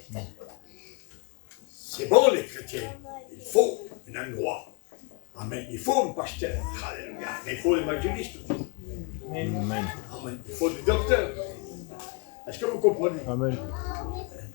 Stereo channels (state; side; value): quieter; right; 31.0 dB